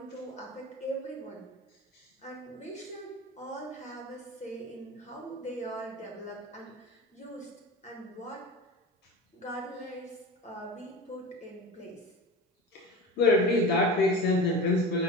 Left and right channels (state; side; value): normal; both; correlation 0.30